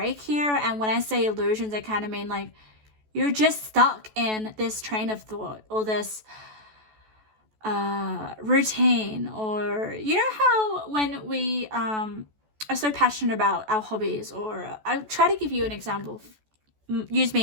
here, and when I say illusions, I kind of mean like you're just stuck in this train of thought or this routine, or you know how when we are so passionate about our hobbies, or I'll try to give you an example, use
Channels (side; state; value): left; late; 14 ms